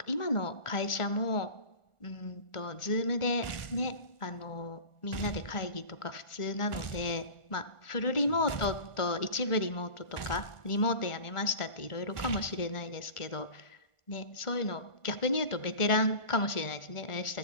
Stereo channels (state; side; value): late; right; 1.4 ms